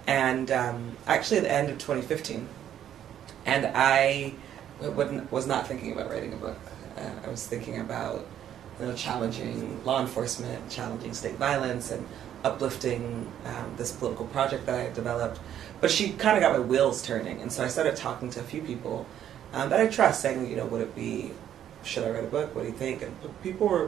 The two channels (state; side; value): quieter; left; 10.4 dB